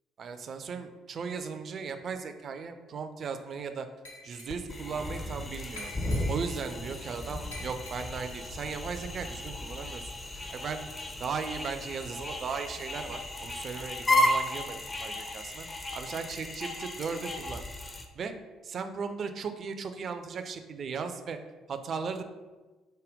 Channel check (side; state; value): both; normal; correlation 0.75